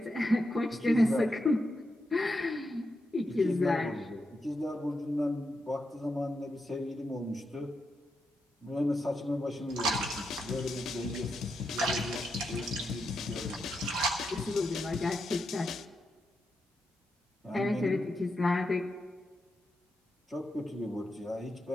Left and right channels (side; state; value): both; normal; correlation 0.85